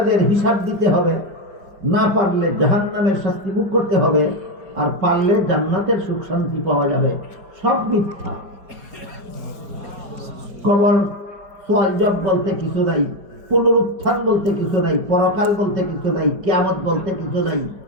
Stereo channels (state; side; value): late; left; 5.2 ms